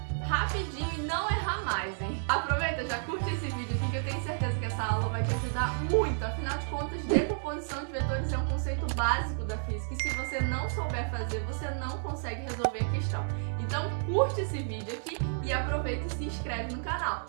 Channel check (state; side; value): silent; left; 57 dB below the other